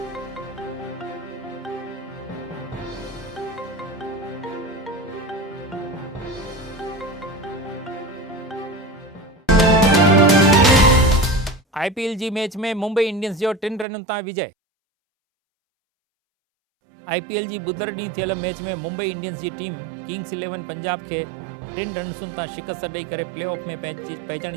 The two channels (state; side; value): drops out; left; at 13.9 s